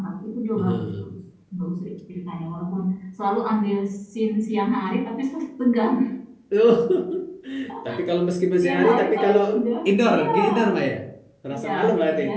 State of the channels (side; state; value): both; identical; correlation 1.00